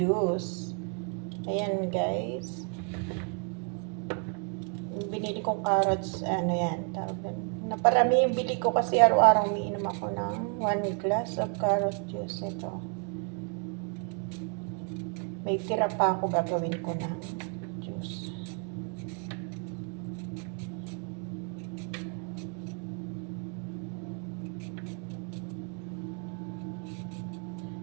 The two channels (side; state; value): left; quieter; 39.4 dB